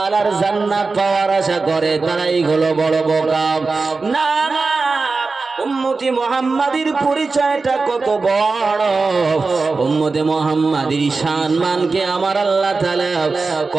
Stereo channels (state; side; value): quieter; left; 4.1 dB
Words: জান্নাত পাওয়ার আশা করে, তারাই হলো বড় বোকা। না না, উম্মতি মুহাম্মাদির পরিচয়টা কত বড়, উম্মতে মুহাম্মাদির সম্মানকে আমার আল্লাহ তাআলা